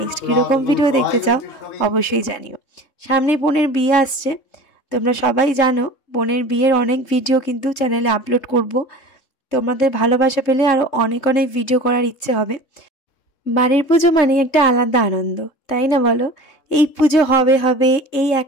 কীরকম ভিডিও দেখতে চাও অবশ্যই জানিও। সামনেই বোনের বিয়ে আসছে, তোমরা সবাই জানো বোনের বিয়ের অনেক ভিডিও কিন্তু চ্যানেলে আপলোড করব। তোমাদের ভালোবাসা পেলে আরও অনেক অনেক ভিডিও করার ইচ্ছে হবে। বাড়ির পুজো মানে একটা আলাদা আনন্দ, তাই না বলো? এই পুজো হবে হবে এই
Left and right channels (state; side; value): late; right; 3.7 ms